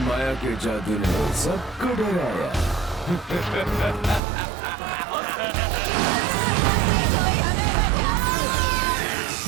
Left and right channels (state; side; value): drops out; left; at 4.2 s